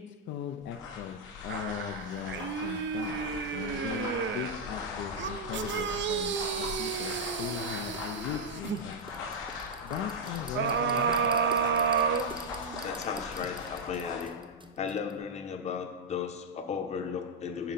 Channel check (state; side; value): normal; both; correlation -0.01